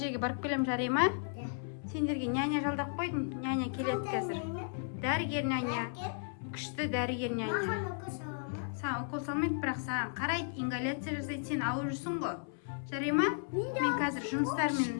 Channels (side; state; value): right; silent; 55 dB below the other